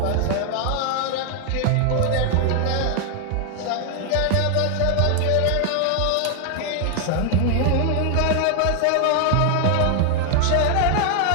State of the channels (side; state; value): both; different; correlation 0.00